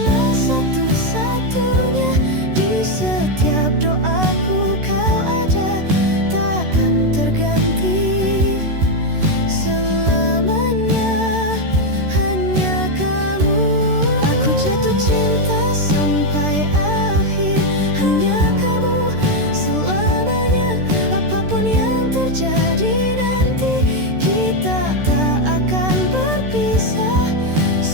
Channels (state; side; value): late; left; 13 ms